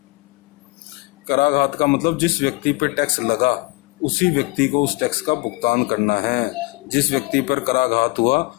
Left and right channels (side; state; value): right; quieter; 23.5 dB